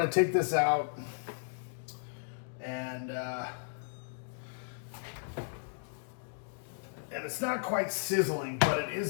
take this out, and it's not quite sizzling, but it is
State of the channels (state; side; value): silent; right; digital silence